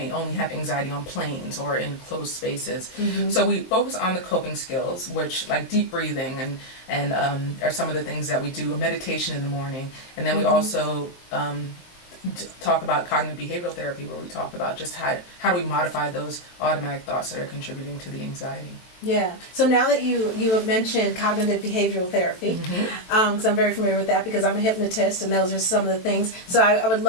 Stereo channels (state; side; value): late; right; 23 ms